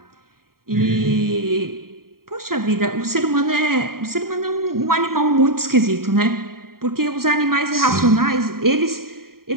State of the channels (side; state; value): left; late; 0.93 ms